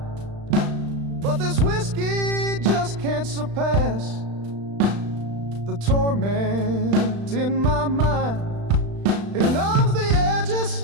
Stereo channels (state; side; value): late; left; 35 ms